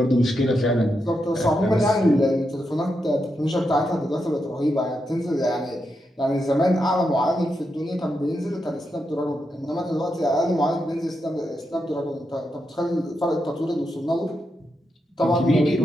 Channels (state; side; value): normal; both; correlation 0.85